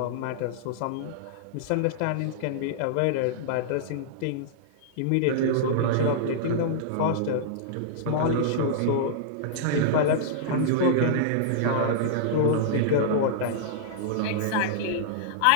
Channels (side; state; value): both; different; correlation -0.02